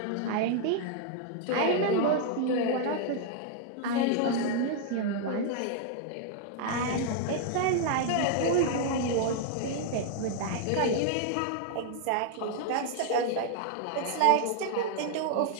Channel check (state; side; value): different; both; correlation 0.00